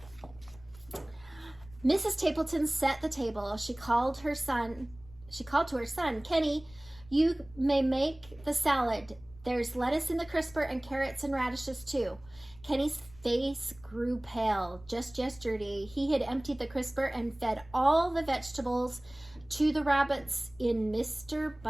Mrs. Tappleton set the table. She called to her son, "Kenny, you may make the salad. There's lettuce in the crisper and carrots and radishes too." Kenny's face grew pale. Just yesterday, he had emptied the crisper and fed all the vegetables to the rabbits in Mr.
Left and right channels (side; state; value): left; noise; rumble, 22 dB below the sound